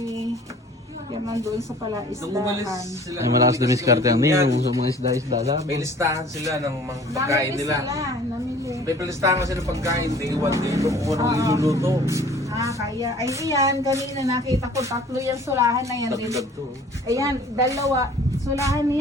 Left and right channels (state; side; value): normal; both; correlation 0.50